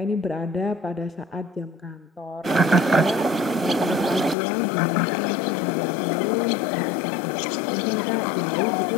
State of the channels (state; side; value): drops out; right; at 4.4 s